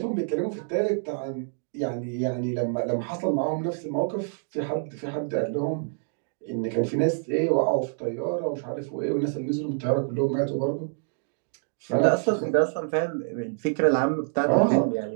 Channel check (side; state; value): left; silent; 60 dB below the other